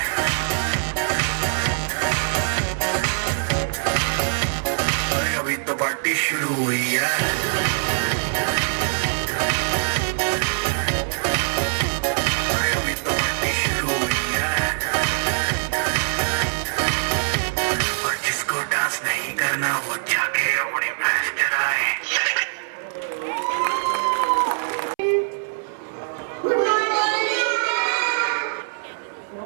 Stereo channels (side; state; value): left; silent; 63 dB below the other